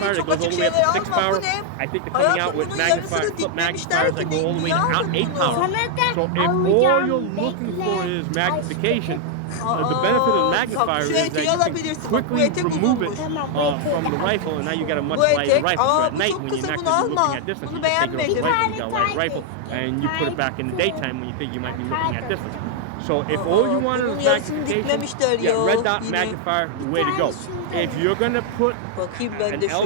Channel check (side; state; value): both; different; correlation 0.00